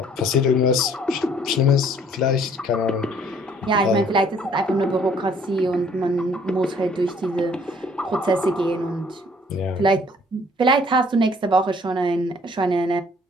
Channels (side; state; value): both; normal; correlation 0.59